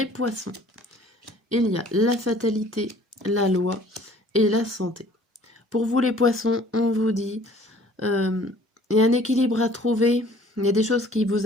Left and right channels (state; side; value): normal; both; correlation 0.53